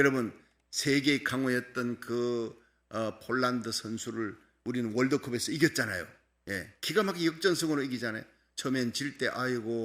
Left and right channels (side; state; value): both; identical; correlation 1.00